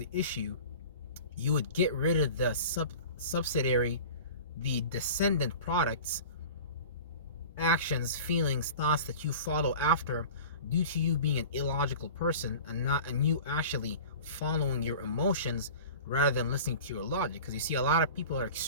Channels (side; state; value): both; inverted; correlation -0.38